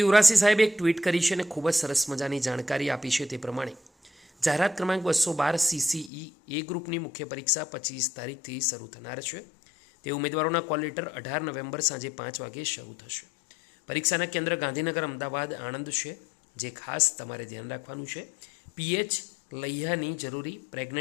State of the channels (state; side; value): drops out; right; at 6.1 s